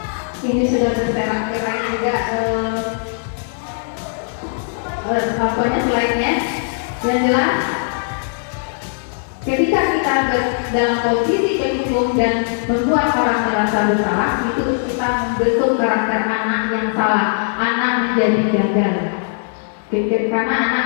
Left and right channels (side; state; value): right; silent; digital silence